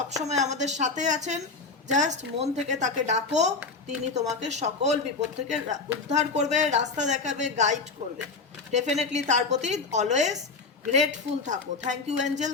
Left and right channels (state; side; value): quieter; right; 4.2 dB